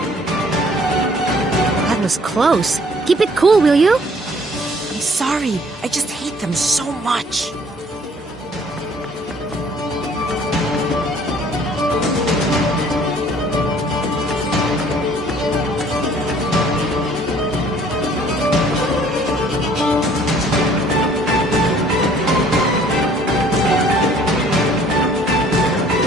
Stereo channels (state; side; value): normal; both; correlation 0.57